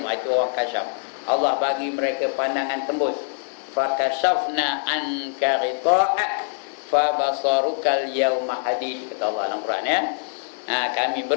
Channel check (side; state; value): right; silent; 63 dB below the other